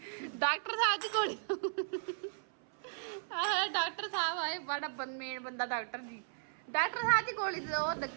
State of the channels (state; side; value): silent; left; 54 dB below the other